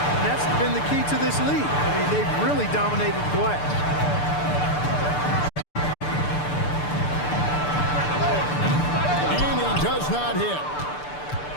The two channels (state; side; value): late; right; 6.8 ms